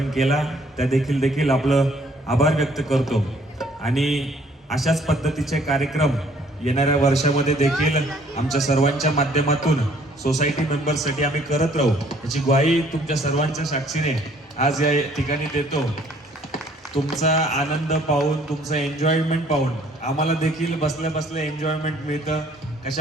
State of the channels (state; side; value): normal; both; correlation 0.60